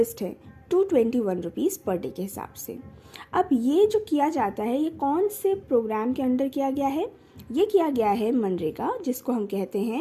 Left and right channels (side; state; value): both; identical; correlation 1.00